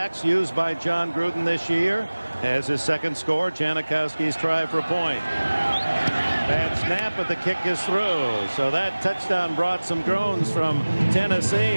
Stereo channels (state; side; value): inverted; both; correlation -1.00